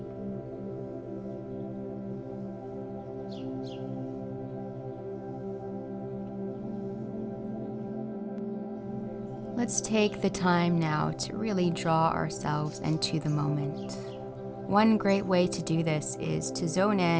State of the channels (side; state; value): both; identical; correlation 1.00